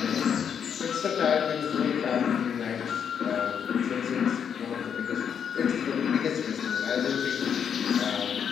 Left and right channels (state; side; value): quieter; right; 7.8 dB